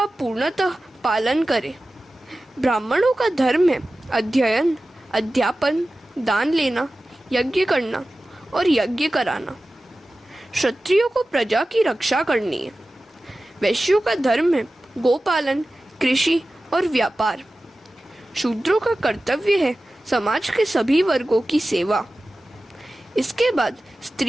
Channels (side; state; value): both; normal; correlation 0.95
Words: पूर्णतः पालन करें। ब्राह्मणों का धर्म है अध्ययन, अध्यापन, दान लेना, यज्ञ करना और यज्ञ कराना। क्षत्रियों को प्रजा की रक्षा करनी है। वैश्यों का धर्म है गोपालन, कृषि और व्यापार। शूद्रों का कर्तव्य है समाज के सभी वर्गों की सेवा। इसके बाद